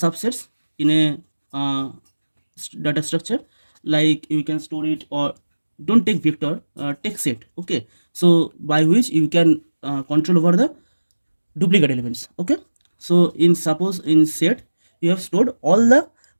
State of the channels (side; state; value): both; inverted; correlation -1.00